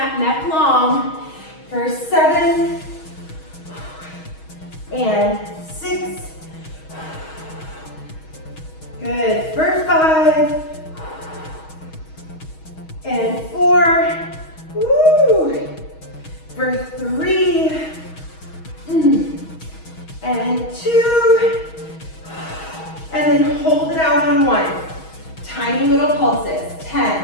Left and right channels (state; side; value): late; right; 6.3 ms